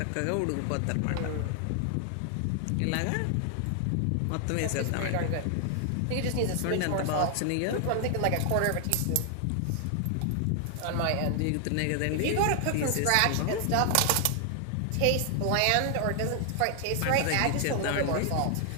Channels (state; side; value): different; both; correlation 0.00